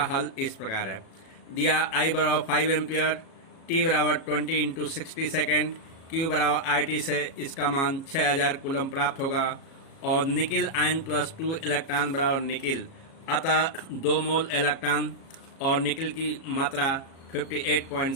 हल इस प्रकार है। दिया I बराबर 5 एम्पीयर, T बराबर 20 इंटू 60 सेकेंड, Q बराबर IT से इसका मान 6000 कूलम प्राप्त होगा और निकिल आयन प्लस 2 इलेक्ट्रॉन बराबर निकिल, अतः 2 मोल इलेक्ट्रॉन और निकिल की मात्रा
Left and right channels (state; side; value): late; right; 37 ms